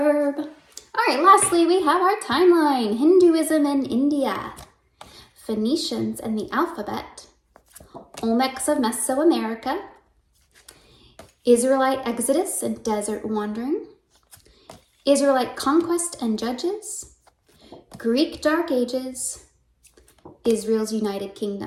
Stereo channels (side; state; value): both; identical; correlation 1.00